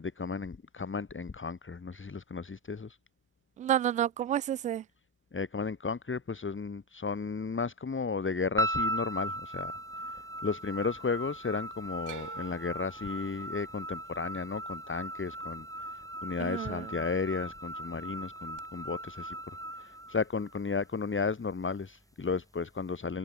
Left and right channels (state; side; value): normal; both; correlation 0.10